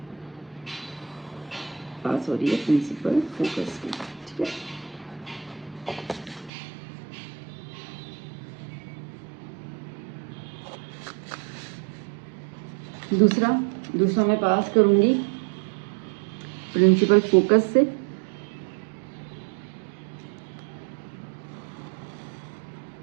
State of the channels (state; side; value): drops out; left; at 6.5 s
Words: पास हो रही है प्रिंसिपल फोकस की। ठीक है, दूसरा मैं पास करूंगी प्रिंसिपल फोकस से,